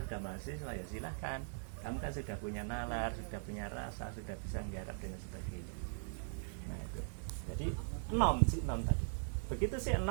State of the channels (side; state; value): left; silent; digital silence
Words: sudah mahasiswa, ya silahkan. Kamu kan sudah punya nalar, sudah punya rasa, sudah bisa menggarap dan sebagainya. Nah itu. Jadi si enom tadi. Begitu si